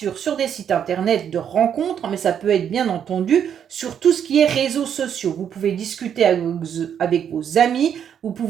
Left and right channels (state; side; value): quieter; left; 8.6 dB